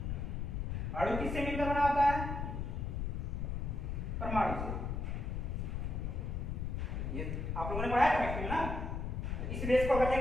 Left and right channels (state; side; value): noise; left; rumble, 2 dB below the sound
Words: अणु किससे मिलकर बना होता है? परमाणु से। ये आप लोगों ने पढ़ा है केमिस्ट्री में ना। इस बेस को अगर